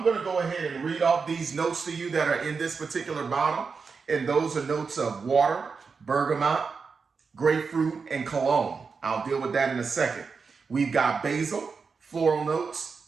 going to go ahead and read off these notes to you that are in this particular bottle. And those are notes of water, bergamot, grapefruit, and cologne. I'll deal with that in a second. We've got basil, floral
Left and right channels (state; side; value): quieter; left; 5.1 dB